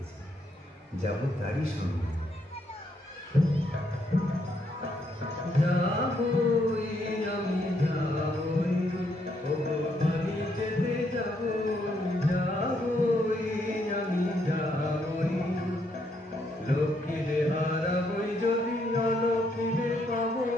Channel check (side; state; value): both; normal; correlation 0.74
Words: যাব তারই সঙ্গে। যাবই আমি যাবই, ওগো বাড়ি যেতে যাবই, যাবই আমি যাবই, লক্ষ্মীরে হারাবই যদি অলক্ষ্মীরে পাবই,